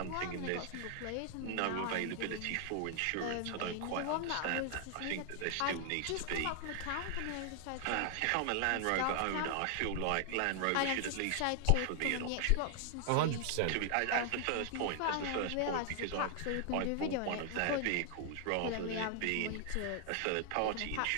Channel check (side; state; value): both; different; correlation 0.00